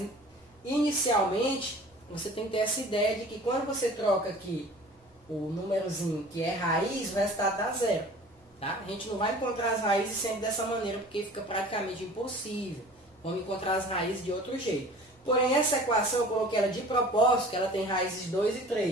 inicialmente você tem que ter essa ideia de que quando você troca aqui o númerozinho que é raiz, o resultado dá 0. Tá? A gente não vai encontrar as raízes sempre dessa maneira, porque fica praticamente impossível. Vamos encontrar as raízes de outro jeito. Porém, essa equação eu coloquei ela de propósito, que ela tem raízes 2 e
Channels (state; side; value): normal; both; correlation 0.45